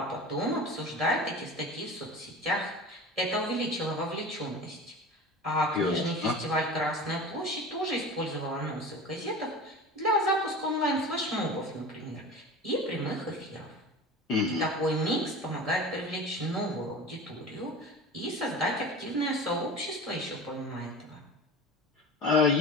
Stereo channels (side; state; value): both; normal; correlation 0.34